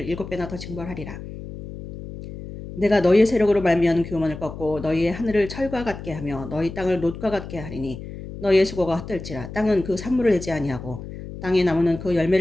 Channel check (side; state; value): left; noise; hum, 11 dB below the sound